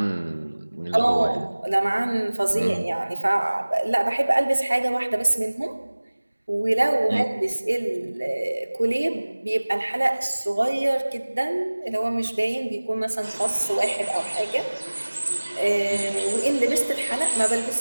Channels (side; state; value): both; inverted; correlation -1.00